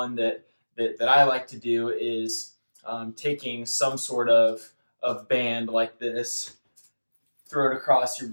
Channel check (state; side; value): inverted; both; correlation -1.00